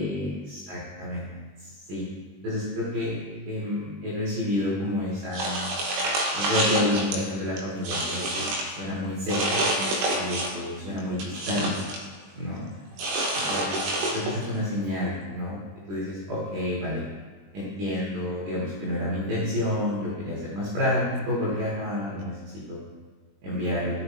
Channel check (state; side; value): late; left; 20 ms